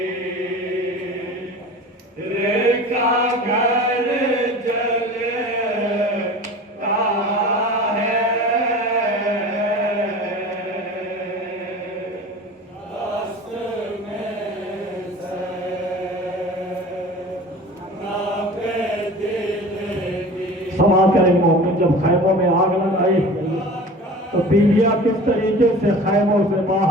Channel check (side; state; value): both; normal; correlation 0.38